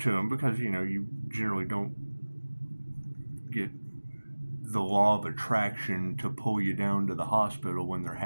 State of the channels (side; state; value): both; inverted; correlation -1.00